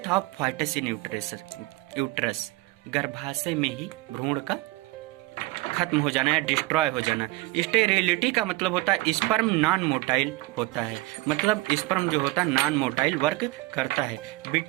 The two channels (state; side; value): quieter; left; 21.3 dB